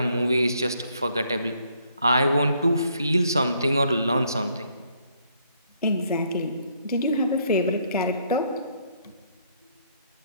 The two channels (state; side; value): inverted; both; correlation -0.69